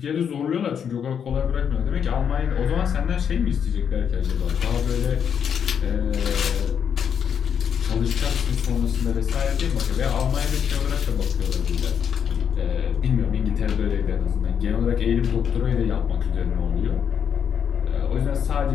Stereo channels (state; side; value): quieter; right; 7.8 dB